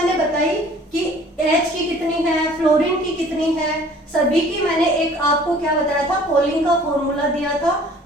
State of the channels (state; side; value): normal; both; correlation 0.52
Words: बताई कि H की कितनी है, फ्लोरीन की कितनी है, सभी की मैंने एक आपको क्या बताया था, पोलिंग का फॉर्मूला दिया था,